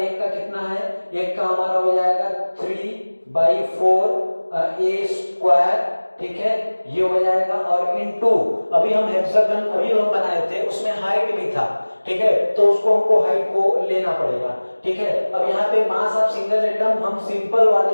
का कितना है, एक का हमारा हो जाएगा 3/4 ए स्क्वायर, ठीक है, ये हो जाएगा। और इनटू अभी हम हेक्सागन अभी हम बनाए थे उसमें हाइट भी था, ठीक है, तो उसको हमको हाइट को लेना पड़ेगा, ठीक है। अब यहाँ पे मास ऑफ सिंगल एटम हम सिंपल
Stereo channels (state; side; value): inverted; both; correlation -1.00